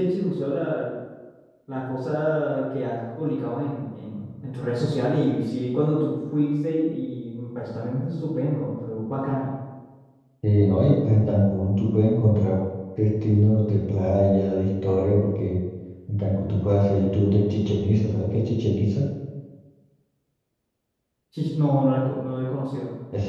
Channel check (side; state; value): both; identical; correlation 1.00